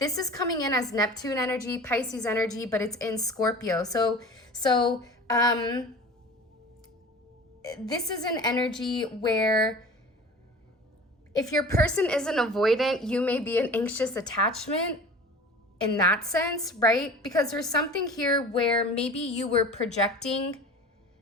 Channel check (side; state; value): both; normal; correlation 0.39